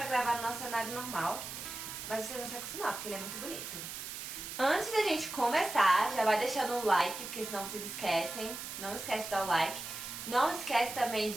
gravar no nosso cenário normal. Mas vocês vão se acostumar, porque ele é muito bonito. Antes da gente começar, já vai deixando o like, porque senão vocês esquecem. Não esquece de dar o like. Não esquece também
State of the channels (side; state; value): right; noise; hiss, 8 dB below the sound